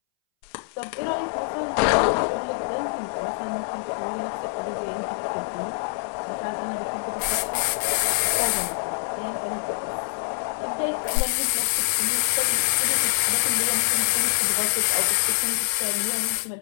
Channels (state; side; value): silent; right; 62 dB below the other